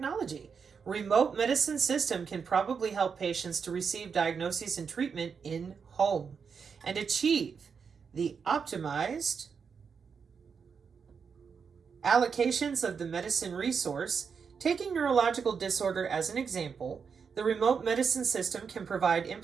remote medicine system can probably help patients to receive diagnoses and treatment in home and achieve the optimized allocations of the medicine resource. Taking neurological disorder as an example, the remote medicine system can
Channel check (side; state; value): left; quieter; 6.1 dB